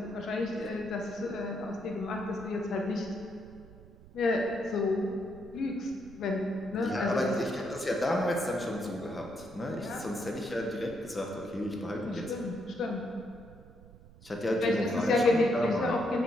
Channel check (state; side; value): noise; right; rumble, 20 dB below the sound